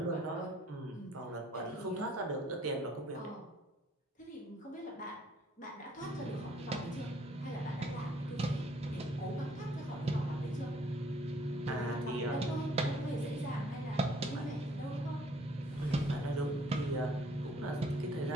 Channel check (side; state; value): both; normal; correlation 0.62